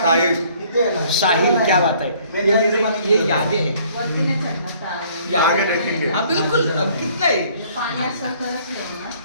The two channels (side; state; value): both; inverted; correlation -0.59